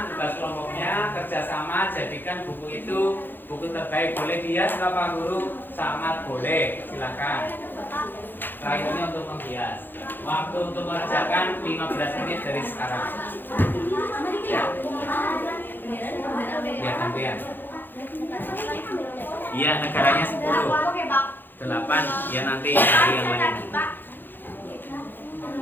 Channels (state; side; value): late; right; 0.094 ms